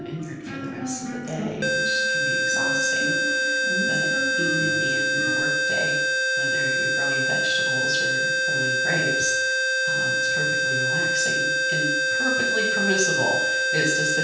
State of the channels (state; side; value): identical; both; correlation 1.00